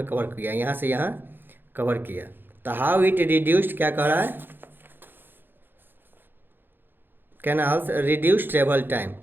कवर किया, यहाँ से यहाँ कवर किया। तो हाउ इट रिड्यूस्ड, क्या कह रहा है, कैनाल्स रिड्यूस ट्रेवल टाइम।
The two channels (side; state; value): left; late; 0.098 ms